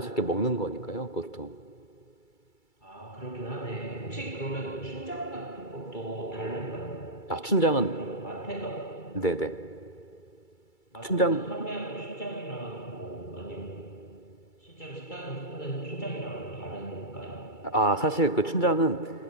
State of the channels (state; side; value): late; right; 2.3 ms